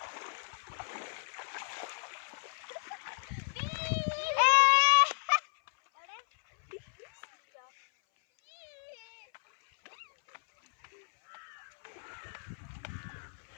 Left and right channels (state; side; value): silent; right; 55 dB below the other